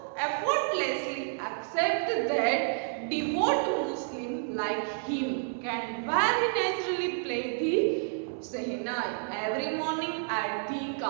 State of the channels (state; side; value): silent; left; 58 dB below the other